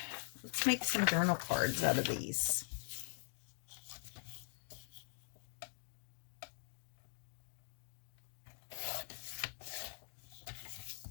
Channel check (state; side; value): silent; right; digital silence